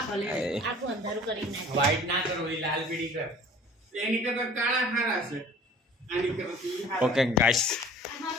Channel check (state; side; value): normal; both; correlation 0.47